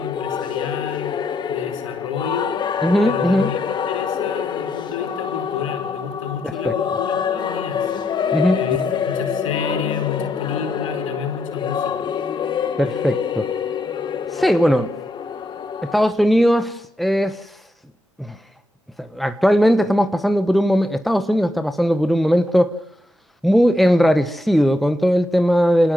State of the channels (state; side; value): normal; both; correlation 0.80